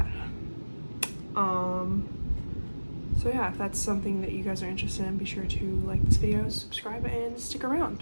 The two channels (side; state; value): both; inverted; correlation -1.00